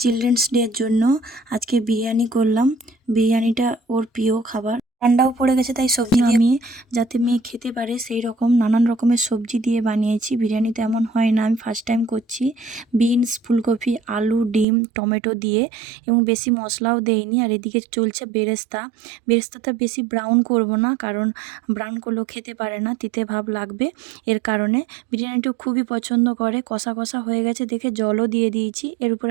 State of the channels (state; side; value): drops out; left; at 14.7 s